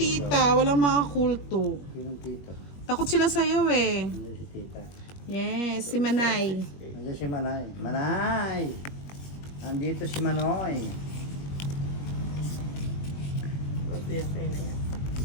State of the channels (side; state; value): right; late; 21 ms